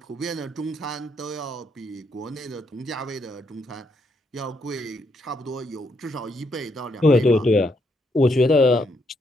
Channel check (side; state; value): both; normal; correlation 0.76